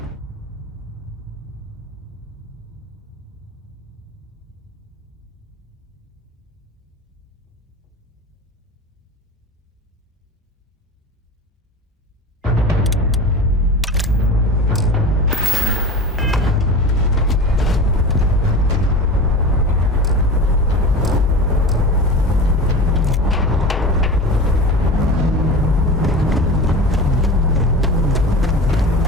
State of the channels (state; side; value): normal; both; correlation 0.31